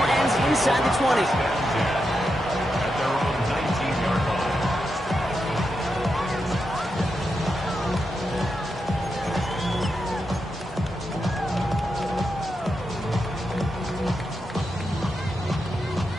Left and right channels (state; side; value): normal; both; correlation 0.86